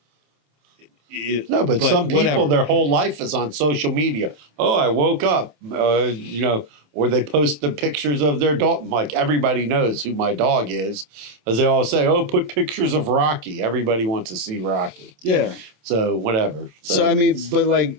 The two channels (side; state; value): left; late; 27 ms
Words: No, but some people, whatever. their whole life is on social media. Oh, I woke up, you know, or they post the pictures of their dog. Like, everybody knows who my dog is, as they all say, oh, put pictures of Rocky. Everybody wants to see Rocky. Yeah. So whatever. So I mean, but